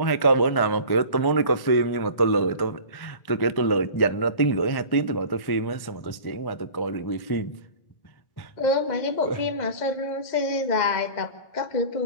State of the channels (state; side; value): late; right; 1.1 ms